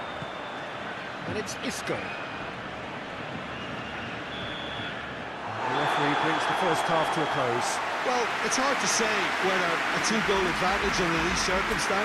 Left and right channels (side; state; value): both; identical; correlation 1.00